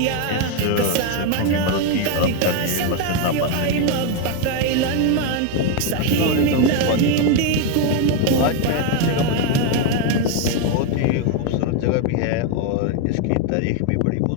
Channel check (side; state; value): both; different; correlation 0.01